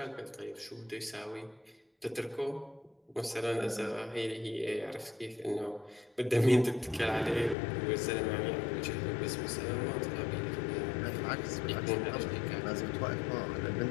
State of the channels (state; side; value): drops out; right; at 7.6 s